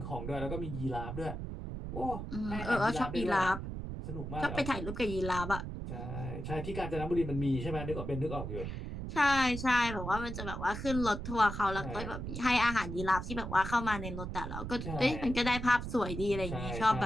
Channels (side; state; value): right; noise; rumble, 6 dB below the sound